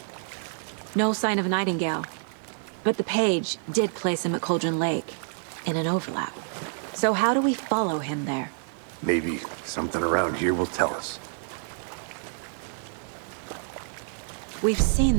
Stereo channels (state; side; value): silent; left; 60 dB below the other